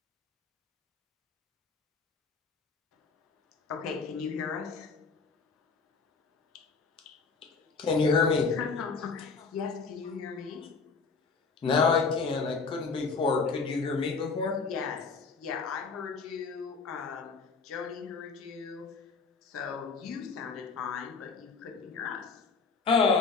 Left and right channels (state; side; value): quieter; right; 4.6 dB